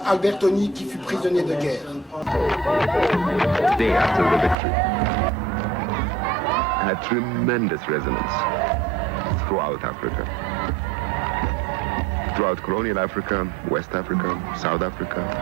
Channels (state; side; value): drops out; left; at 4.5 s